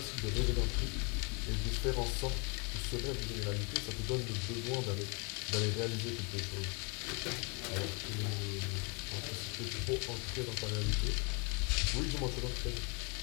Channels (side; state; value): right; quieter; 33.5 dB